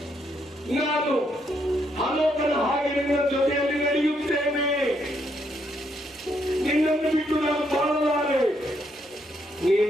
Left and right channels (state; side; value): normal; both; correlation 0.75